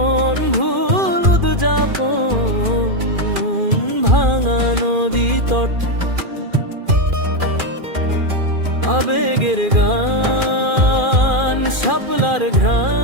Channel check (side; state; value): left; late; 2.4 ms